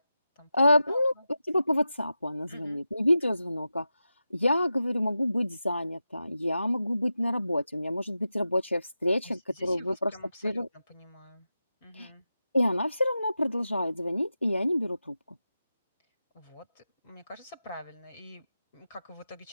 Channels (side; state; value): both; inverted; correlation -0.91